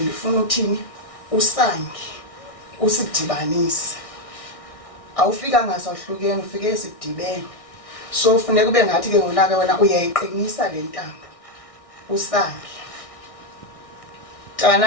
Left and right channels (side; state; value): right; late; 1.6 ms